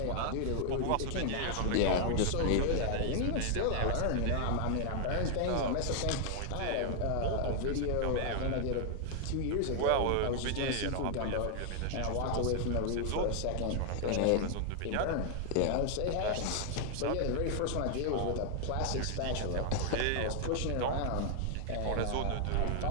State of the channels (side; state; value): both; different; correlation 0.00